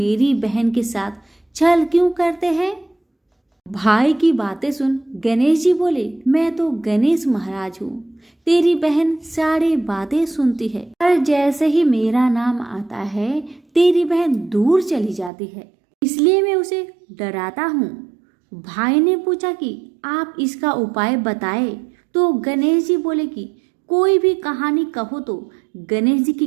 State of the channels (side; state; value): left; drops out; at 15.3 s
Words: बहन के साथ छल क्यों करते हैं। भाई की बातें सुन गणेश जी बोले, मैं तो गणेश महाराज हूँ, तेरी बहन सारी बातें सुनती है, पर जैसे ही मेरा नाम आता है तेरी बहन दूर चली जाती है, इसलिए मैं उसे डराता हूँ। भाई ने पूछा कि आप इसका उपाय बताए तो गणेश जी बोले कि कोई भी कहानी कहो तो गणेश जी